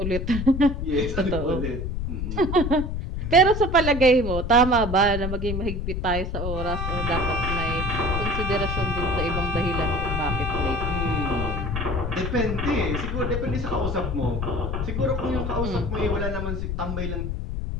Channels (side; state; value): left; noise; rumble, 3 dB below the sound